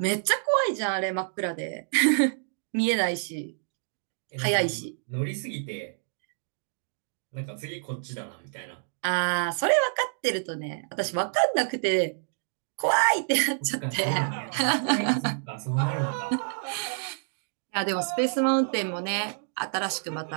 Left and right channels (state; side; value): silent; left; digital silence